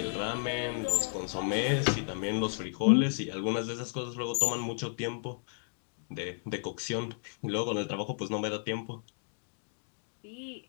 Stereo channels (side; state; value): right; silent; digital silence